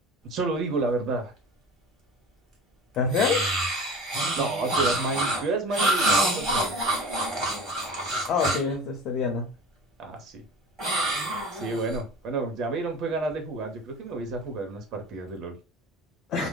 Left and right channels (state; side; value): normal; both; correlation 0.36